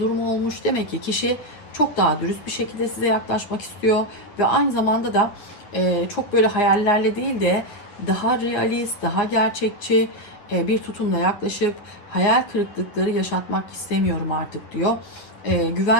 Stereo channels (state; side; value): late; right; 9.7 ms